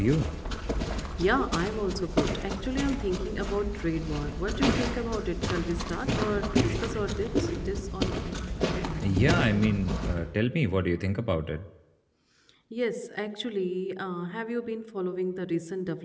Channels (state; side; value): identical; both; correlation 1.00